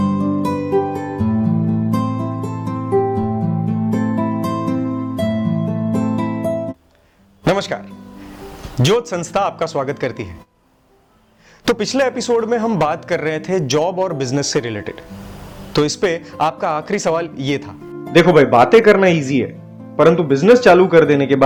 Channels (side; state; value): both; identical; correlation 1.00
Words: नमस्कार, ज्योत संस्था आपका स्वागत करती है। तो पिछले एपिसोड में हम बात कर रहे थे जॉब और बिजनेस से रिलेटेड। तो इस पे आपका आखिरी सवाल ये था, देखो भाई, बातें करना इजी है, परंतु बिजनेस चालू कर देने के